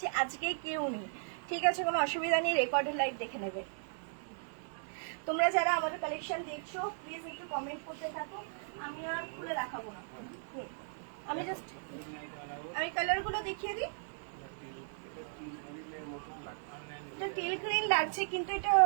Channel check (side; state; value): left; silent; digital silence